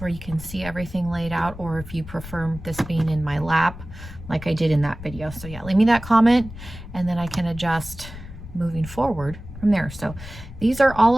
you can see everything laid out, or if you prefer this being in my lap like I did in that video. So yeah, leave me that comment and then I can adjust moving forward from there. So these are all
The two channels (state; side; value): noise; left; rumble, 13 dB below the sound